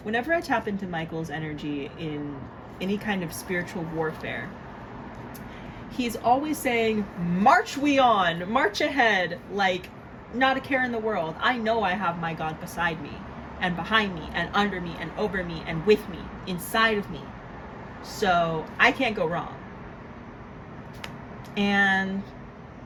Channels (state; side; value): identical; both; correlation 1.00